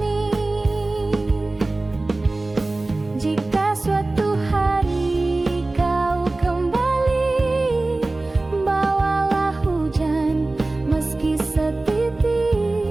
Jika suatu hari kau kembali, bawalah hujan meski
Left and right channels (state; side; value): quieter; left; 3.0 dB